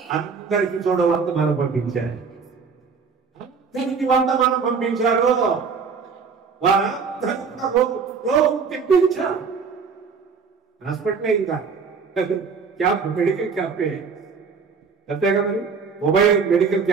అందరికి చూడవంతమానం పంపించారు. అందరికి వంతమానం పంపించారు. వారందరూ రోగం తెప్పించారు. హాస్పిటల్ ఇంకా క్యాంప్, మెడికల్ క్యాంపే అంతే కదండి. మొబైల్ మెడికల్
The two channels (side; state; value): left; quieter; 5.6 dB